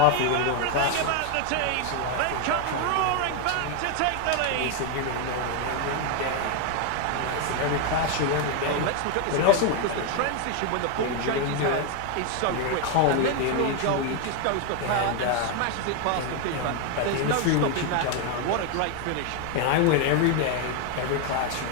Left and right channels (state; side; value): different; both; correlation 0.01